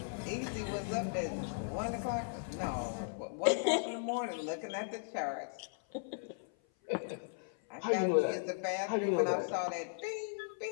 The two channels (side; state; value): right; silent; 53 dB below the other